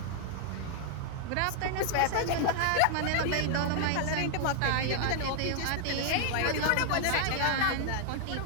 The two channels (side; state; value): both; different; correlation 0.00